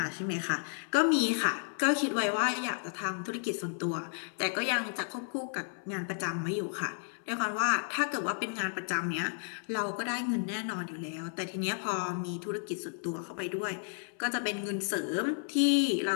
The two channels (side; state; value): right; silent; 56 dB below the other